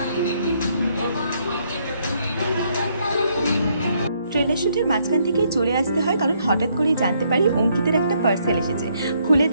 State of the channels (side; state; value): both; inverted; correlation -0.72